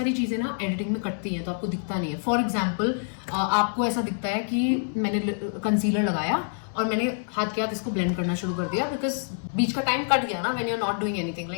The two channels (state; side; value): silent; right; 61 dB below the other